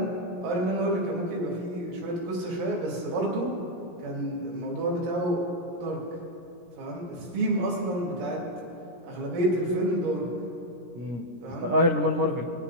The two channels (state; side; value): late; left; 17 ms